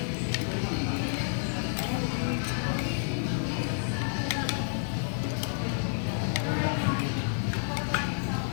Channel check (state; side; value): silent; right; 58 dB below the other